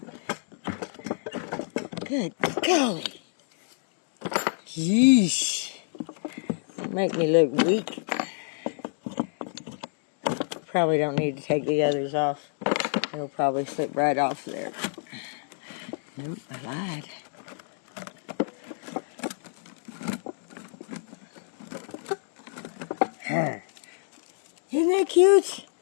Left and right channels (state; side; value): silent; right; digital silence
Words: Good golly. Yeesh. Make me look weak. Probably don't need to take the others off. It'll probably slip right off there. Nope, I lied. Isn't that cute?